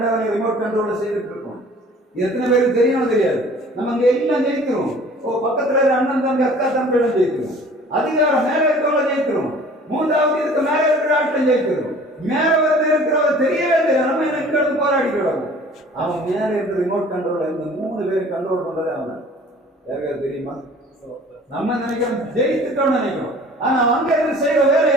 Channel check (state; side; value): normal; both; correlation 0.49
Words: ரிமோட் கண்ட்ரோல செய்துட்டு இருக்கோம். எத்தனை பேருக்கு தெரியும் தெரியாது. நம்ம அங்க எல்லாம் ஜெயிக்கிறோம். பக்கத்துல அண்ணன் தம்பி அக்கா தம்பியிடம் ஜெயிக்கிறோம். அதிகாரம் மேல இருக்கவங்கள ஜெயிக்கிறோம். மூன்றாவது இதுக்கு மேல இருக்கிற ஆட்டம் ஜெயிக்கிறோம். மேல வந்து இருக்கிறவங்க தெரியவே தெரியாது. நம்ம எனக்கு போராடிக்கிறோம். அவன் மேல இருக்கிற ரிமோட் கண்ட்ரோல் இந்த 3 பேர் கண்ட்ரோல் பண்றதே அவன். யாருக்காவது தெரியுமா? நம்ம நினைக்கிறோம் ஜெயித்துட்டோம்னு நினைக்கிறோம். ஆனா அங்க இருந்து செய்யற வேலை